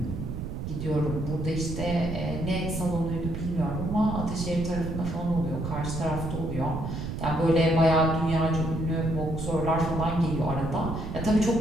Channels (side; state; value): right; noise; rumble, 5 dB below the sound